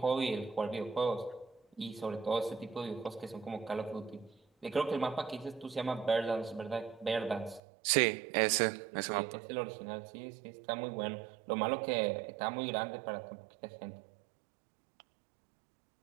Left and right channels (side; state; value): left; drops out; at 7.6 s